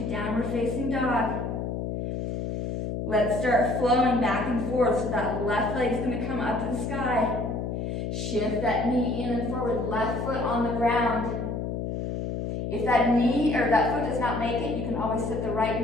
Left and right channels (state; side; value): noise; left; hum, 3 dB below the sound